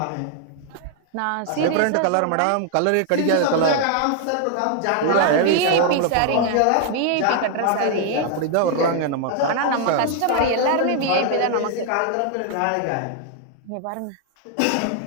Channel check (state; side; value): different; both; correlation 0.00